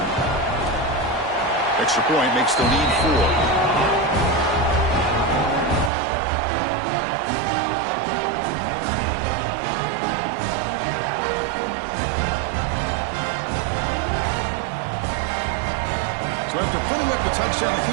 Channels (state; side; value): drops out; left; at 5.9 s